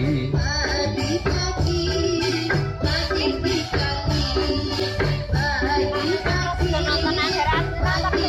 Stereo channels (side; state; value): both; identical; correlation 1.00